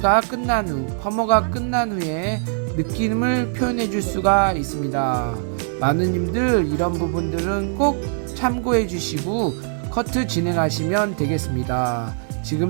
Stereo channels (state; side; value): silent; left; digital silence